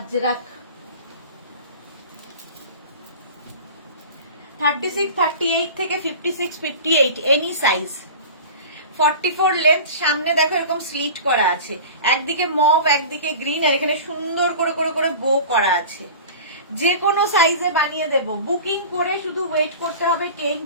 36, 38 থেকে 56, 58 এনি সাইজ। 44 লেন্থ, সামনে দেখো এরকম স্লিট করা আছে, একদিকে মভ একদিকে গ্রিন, আর এখানে সুন্দর করে করে করে বো করা আছে। যে কোনো সাইজে বানিয়ে দেব। বুকিং করে শুধু ওয়েট করতে হবে 10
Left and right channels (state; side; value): inverted; both; correlation -0.36